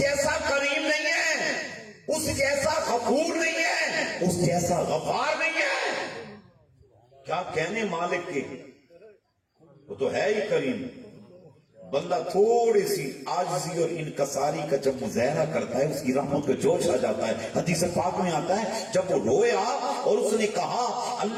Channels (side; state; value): both; identical; correlation 1.00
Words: کریم نہیں ہے، اس جیسا غفور نہیں ہے، اس جیسا غفار نہیں ہے. کیا کہنے مالک کے، وہ تو ہے ہی کریم. بندہ تھوڑی سی عاجزی اور انکساری کا جب مظاہرہ کرتا ہے اس کی رحمت کا جوش آ جاتا ہے. حدیث پاک میں آتا ہے جب وہ رویا اور اس نے کہا